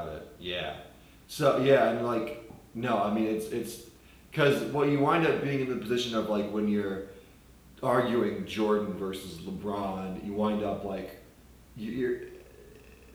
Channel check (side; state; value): both; identical; correlation 1.00